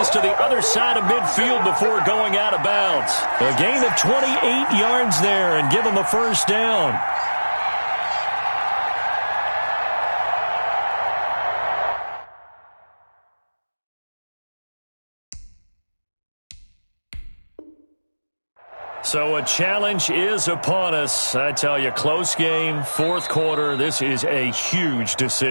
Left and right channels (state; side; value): inverted; both; correlation -1.00